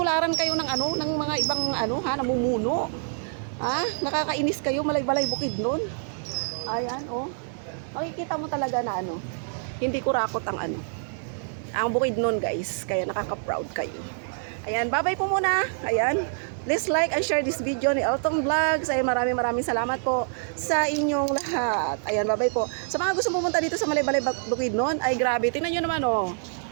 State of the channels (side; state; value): left; silent; digital silence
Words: kayo ng ng mga ibang namumuno. Nakakainis kayo, Malaybalay Bukidnon. Ayan, makikita mo talaga na hindi kurakot ang ang Bukidnon, guys. Kaya nakaka-proud kayo. Ayan, bye-bye po muna. Ayan. Please like and share this video ni Elton Vlogs. Ay maraming salamat po sa inyong lahat. Ayan, bye-bye po. Sa mga gusto pumunta dito sa Malaybalay Bukidnon, ay grabe. Tingnan nyo naman, oh.